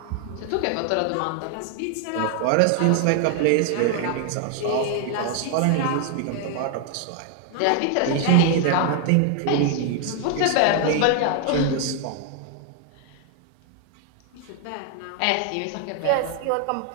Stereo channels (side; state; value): both; different; correlation 0.00